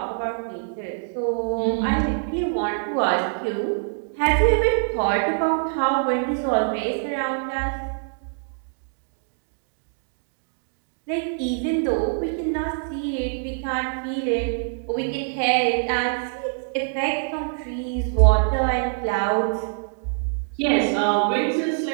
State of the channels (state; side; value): silent; left; digital silence